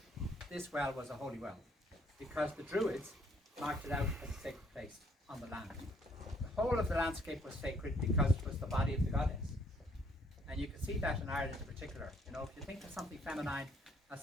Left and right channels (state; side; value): normal; both; correlation 0.65